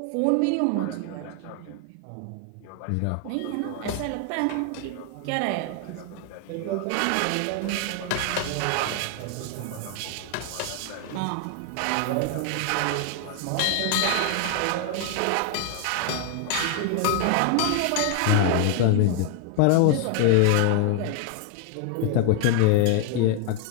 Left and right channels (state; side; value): different; both; correlation 0.00